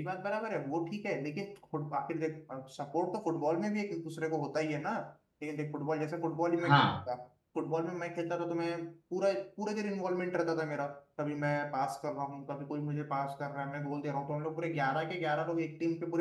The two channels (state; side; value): identical; both; correlation 1.00